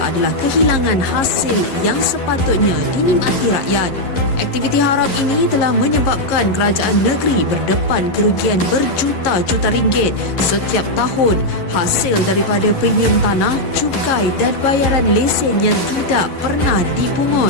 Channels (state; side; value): late; right; 11 ms